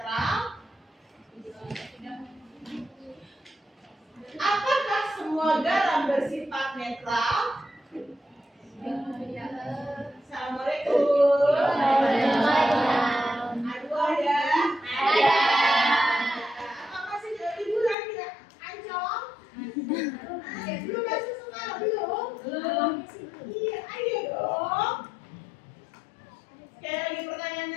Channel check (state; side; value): drops out; right; at 17.9 s